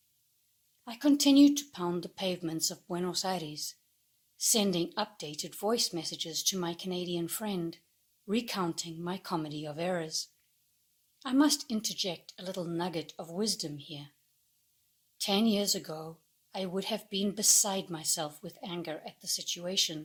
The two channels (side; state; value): both; identical; correlation 1.00